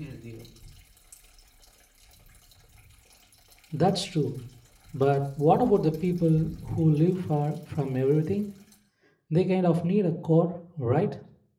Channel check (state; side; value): identical; both; correlation 1.00